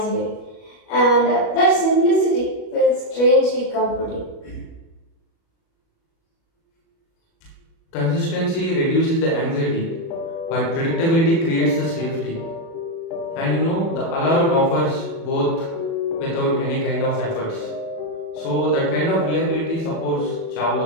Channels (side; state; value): right; late; 37 ms